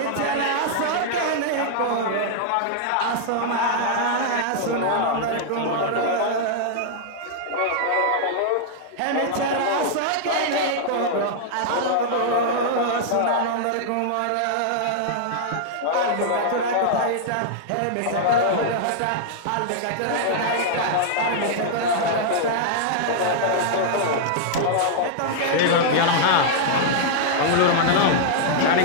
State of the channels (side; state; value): both; different; correlation -0.01